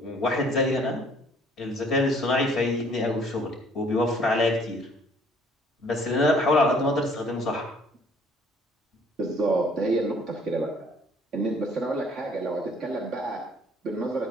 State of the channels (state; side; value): normal; both; correlation 0.59